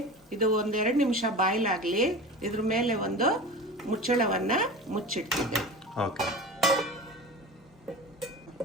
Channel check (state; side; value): normal; both; correlation 0.32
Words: ಇದು 1-2 ನಿಮಿಷ ಬಾಯ್ಲ್ ಆಗಲಿ. ಇದ್ರ ಮೇಲೆ ಒಂದು ಮುಚ್ಚಳವನ್ನು ಮುಚ್ಚಿಟ್ಟಿದ್ದೆ.